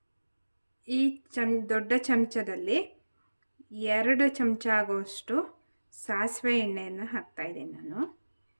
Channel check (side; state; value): both; inverted; correlation -1.00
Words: ಈ ದೊಡ್ಡ ಚಮಚದಲ್ಲಿ 2 ಚಮಚ ಆಗೋಷ್ಟು ಸಾಸಿವೆ ಎಣ್ಣೆಯನ್ನು ಹಾಕ್ತಾಯಿದ್ದೀನಿ. ನಾನು